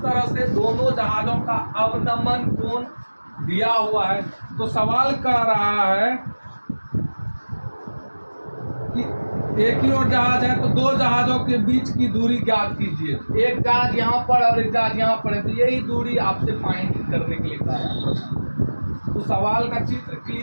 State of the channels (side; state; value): both; inverted; correlation -1.00